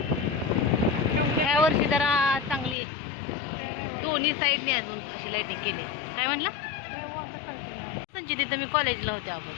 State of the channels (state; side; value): drops out; right; at 2.8 s